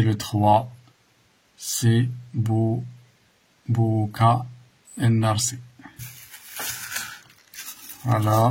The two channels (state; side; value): identical; both; correlation 1.00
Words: le 3, c'est Bouka El-Narsi.